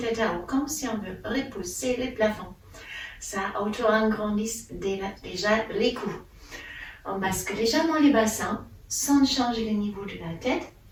à haut, comme si on veut repousser les plafonds. Ça auto-agrandit déjà les coups. On bascule légèrement les bassins, sans changer le niveau de la tête.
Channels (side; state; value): both; identical; correlation 1.00